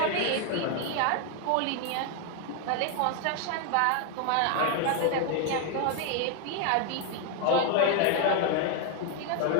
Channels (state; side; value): different; both; correlation 0.01